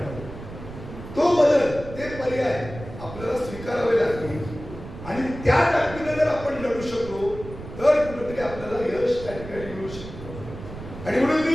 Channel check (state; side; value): noise; right; rumble, 12 dB below the sound